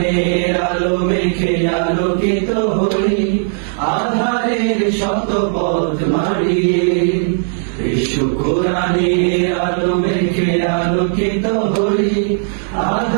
আলো মেখে আলোকিত হই আধারের শত পথ মারিয়ে। এসো কোরআনের আলো মেখে আলোকিত হই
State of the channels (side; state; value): left; silent; digital silence